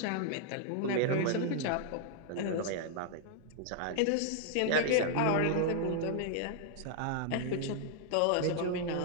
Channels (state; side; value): different; both; correlation -0.01